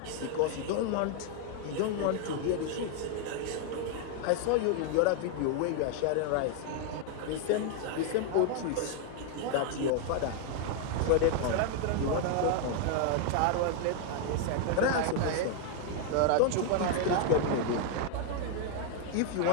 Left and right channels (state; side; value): different; both; correlation 0.01